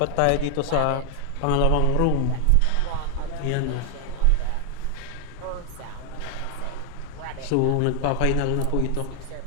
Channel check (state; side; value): different; both; correlation 0.00